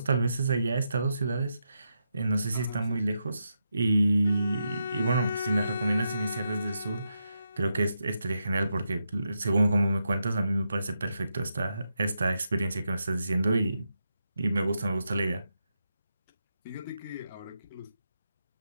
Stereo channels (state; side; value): inverted; both; correlation -0.84